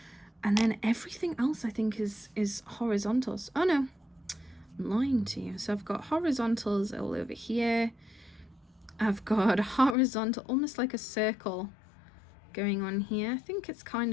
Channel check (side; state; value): right; drops out; at 10.0 s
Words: and then everything else I think is horizontals. Oh no, I'm lying to you. So I've got horizontals all over here. I've got a horizontal, almost like a circle going on here. I think it's kind